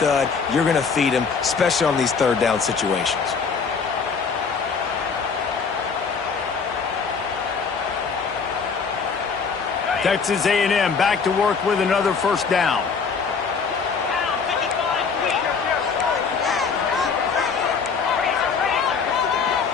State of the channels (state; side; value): quieter; right; 5.5 dB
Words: You're going to feed him, especially on these third down situations. Texas A&M back to work with another first down.